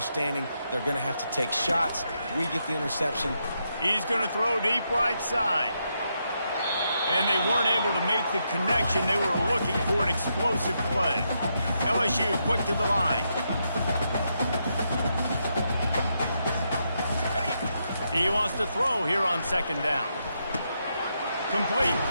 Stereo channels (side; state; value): both; inverted; correlation -0.81